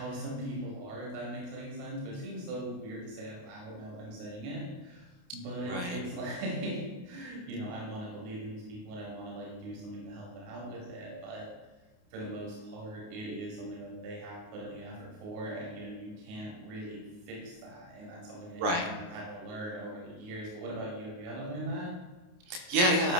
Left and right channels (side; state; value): left; late; 28 ms